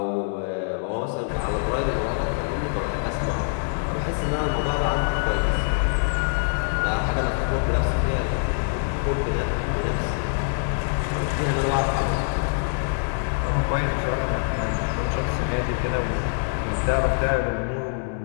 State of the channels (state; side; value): silent; right; digital silence